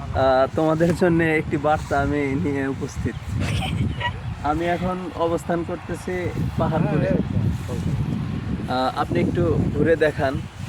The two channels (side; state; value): both; identical; correlation 1.00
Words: তোমাদের জন্য একটি বার্তা আমি নিয়ে উপস্থিত। আমি এখন অবস্থান করতেছি পাহাড়পুরে। আপনি একটু ঘুরে দেখান।